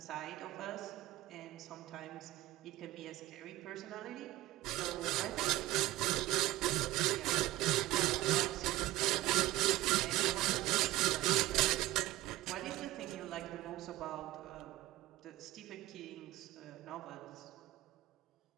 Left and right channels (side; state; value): left; quieter; 16.9 dB